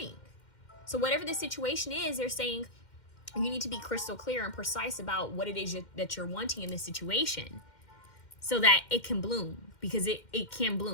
So whatever the situation is, they're saying you need to be crystal clear and precise about what it is that you're wanting in this situation, so that it can bloom, because it can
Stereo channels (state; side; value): late; right; 2.1 ms